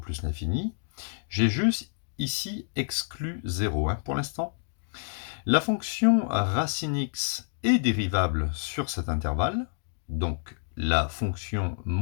l'infini. J'ai juste ici exclu 0 pour l'instant. La fonction racine x est dérivable sur cet intervalle, donc la fonction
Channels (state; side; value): silent; right; digital silence